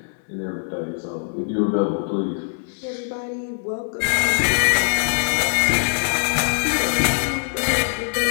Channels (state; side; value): silent; right; 64 dB below the other